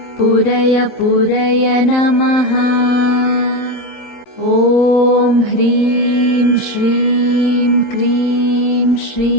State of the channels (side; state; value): right; late; 12 ms